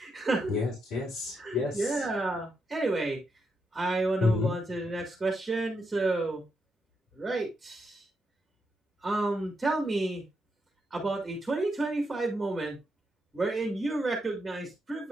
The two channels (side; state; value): both; normal; correlation 0.82